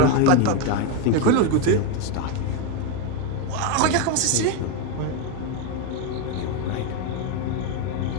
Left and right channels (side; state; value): both; different; correlation 0.02